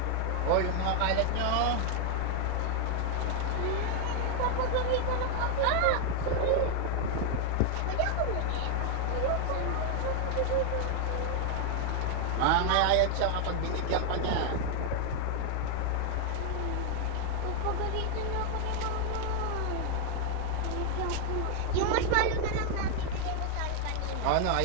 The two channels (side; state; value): both; different; correlation 0.00